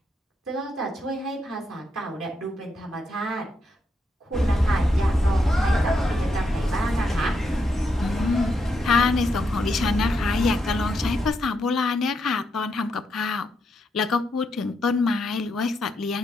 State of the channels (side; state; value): both; normal; correlation 0.81